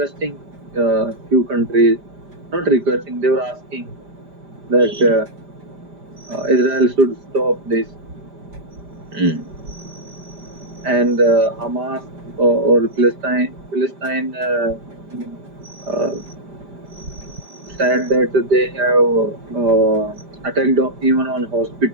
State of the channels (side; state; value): left; late; 5.0 ms